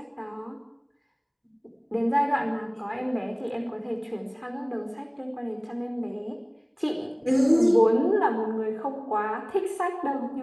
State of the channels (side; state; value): both; identical; correlation 1.00